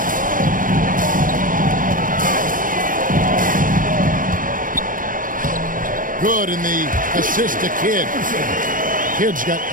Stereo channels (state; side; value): late; left; 0.39 ms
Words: Good in the assist to Kidd. Kidd's got